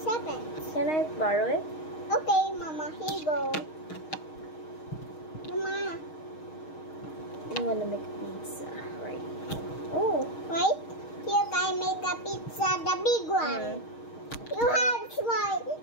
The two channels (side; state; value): right; late; 6.4 ms